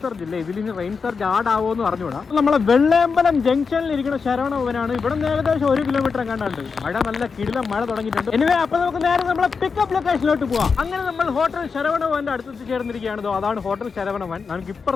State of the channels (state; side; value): quieter; right; 5.3 dB